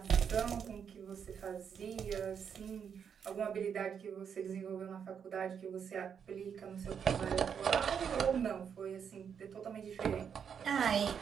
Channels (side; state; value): left; quieter; 7.4 dB